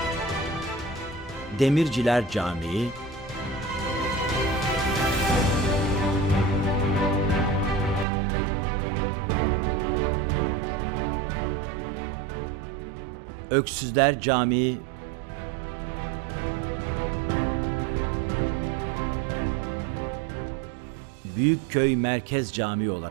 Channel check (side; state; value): left; drops out; at 8.1 s